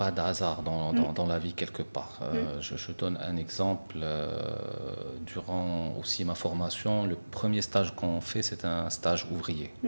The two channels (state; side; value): inverted; both; correlation -1.00